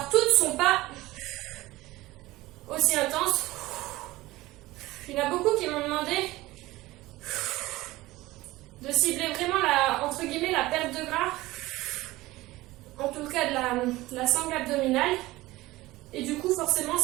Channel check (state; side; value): quieter; left; 18.6 dB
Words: toutes ne sont pas aussi intenses. Il y en a beaucoup qui m'ont demandé de cibler vraiment entre guillemets, la perte de gras. En tout cas, de la sangle abdominale. Et du coup, forcément,